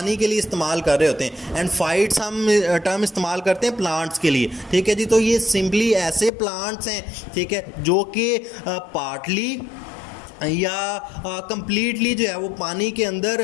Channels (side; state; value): right; drops out; at 6.3 s